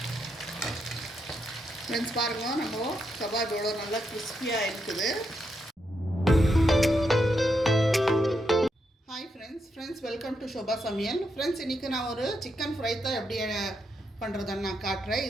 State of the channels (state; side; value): normal; both; correlation 0.82